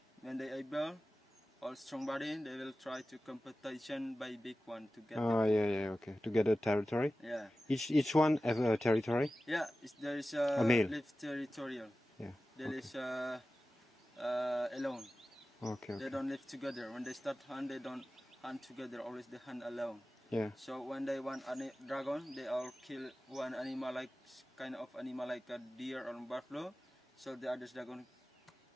when they able. All strong body, they will try to competition by big one to get. Oh yeah, okay. To get a territory. Yeah. Each one have a territory. Yeah, there is a male. Live territorial. Yeah. There is alone. Okay. They don't live together. When they start hunt, they don't hunt together. Always they hunt alone. Yeah. So when they want a dragon, they all kill one animal, like kind of animal like a deer or buffalo. So the others dragon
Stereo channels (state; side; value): normal; both; correlation 0.95